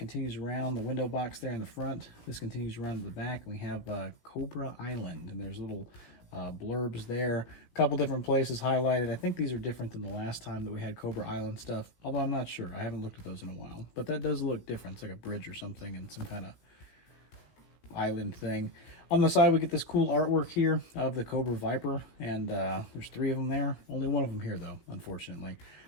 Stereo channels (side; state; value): right; late; 16 ms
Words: around the window box there in the front. This continues around to the back. We have Cobra Island, and there's little blurbs there. A couple different places highlighted. I think these are different than the last time that we had Cobra Island stuff, although I'm not sure. I haven't looked at those in a while. But that does look different. It's like a bridge or something and some kind of island thing. On the side, we get this cool artwork here of the Cobra Viper, and there's 3 of them there. Only one of them here, though, unfortunately.